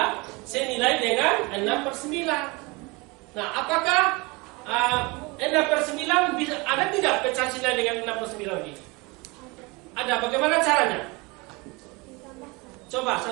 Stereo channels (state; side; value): quieter; left; 26.0 dB